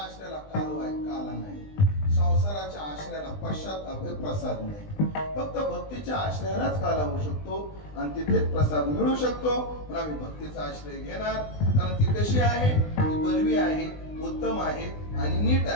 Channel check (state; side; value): late; right; 20 ms